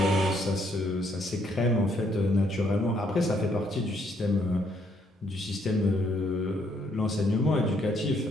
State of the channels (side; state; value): both; normal; correlation 0.71